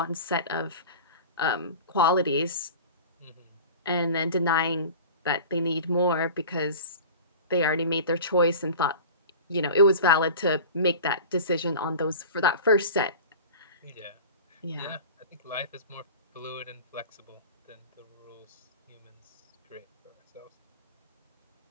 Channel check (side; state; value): both; inverted; correlation -0.36